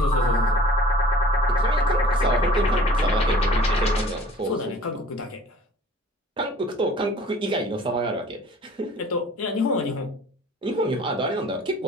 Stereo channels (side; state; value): both; normal; correlation 0.48